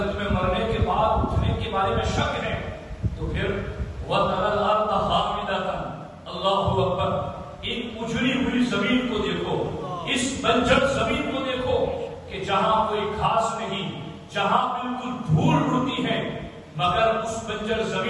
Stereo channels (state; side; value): identical; both; correlation 1.00